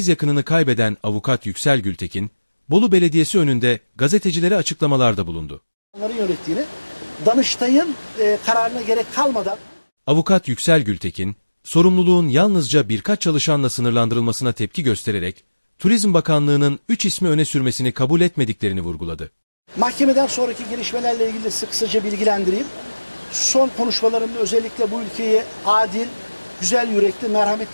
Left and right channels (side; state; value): both; inverted; correlation -1.00